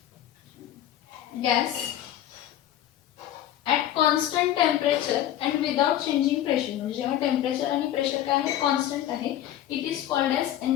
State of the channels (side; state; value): right; quieter; 12.1 dB